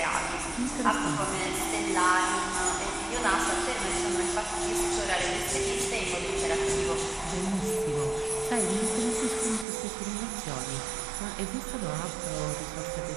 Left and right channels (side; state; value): left; drops out; at 9.7 s